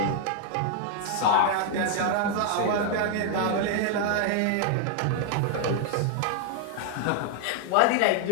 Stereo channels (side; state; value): both; different; correlation 0.00